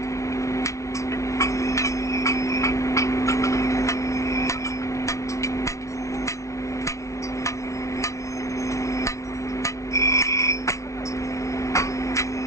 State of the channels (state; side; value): late; right; 0.14 ms